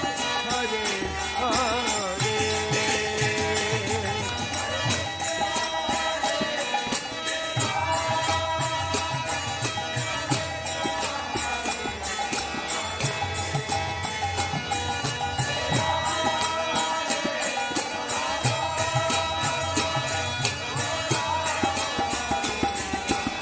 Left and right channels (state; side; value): identical; both; correlation 1.00